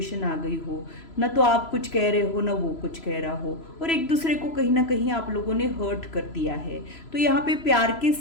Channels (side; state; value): right; late; 3.0 ms